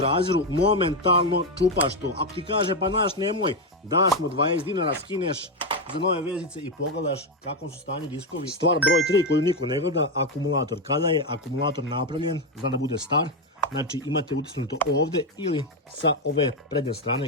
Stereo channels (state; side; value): normal; both; correlation 0.08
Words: momentalno čupaš to. Ako ti kaže pa naš nemoj, daš mu 20 dinara, skineš za nove vezice i pogledaš kakvom su stanju diskovi. Stvar broj 3 koju niko ne gleda, akumulator. Kada je akumulator napravljen, zna da bude star, znači imate utisnuto ovde ili sa ove prednje